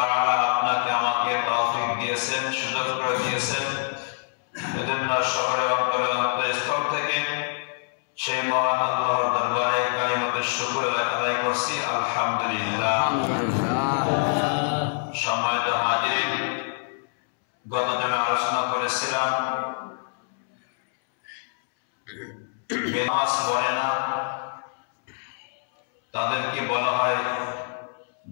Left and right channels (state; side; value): silent; right; 61 dB below the other